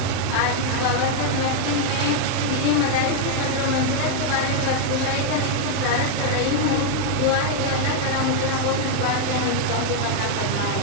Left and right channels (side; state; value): both; different; correlation 0.00